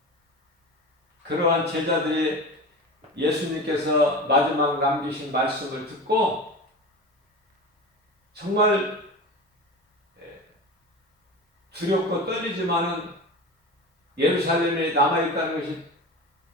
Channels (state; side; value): normal; both; correlation 0.29